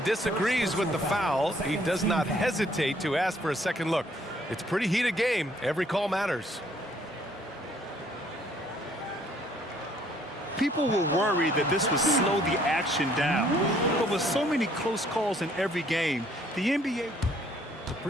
with the foul. He does not hesitate to ask for a second look. It's a pretty heated game. Every call matters. People were worried that this would slow the action down. But with so many close calls in every game, the NBA... The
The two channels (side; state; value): both; normal; correlation 0.63